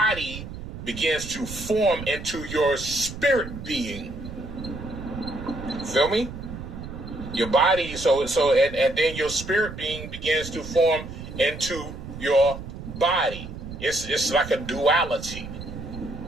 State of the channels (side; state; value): right; noise; rumble, 10 dB below the sound